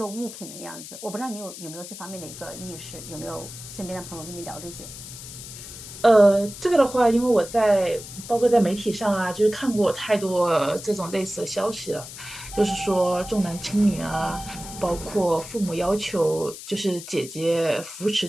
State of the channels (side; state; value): left; noise; hiss, 13 dB below the sound